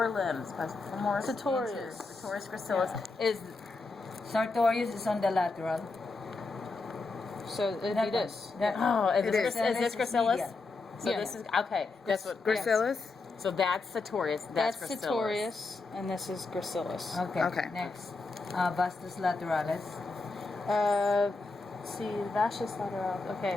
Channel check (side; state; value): right; quieter; 3.7 dB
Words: limbs. Femoris. Sartorius. Sartorius gracilis is. Sartorius is on the lateral. So it'd be That this. one. That one. Oh, is It this, is. is this gracilis? medial. So Yeah. this is okay. That's what. Gracilis? So that's sartorius. That's gracilis. sartorius, and this is gracilis. Okay. Okay. Next. Vastus lateralis. Let's see, vastus lateral. Okay,